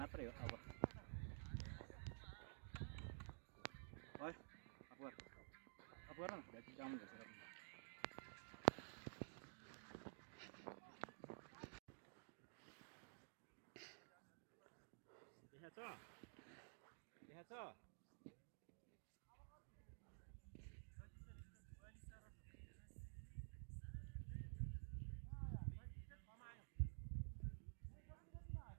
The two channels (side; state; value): left; silent; digital silence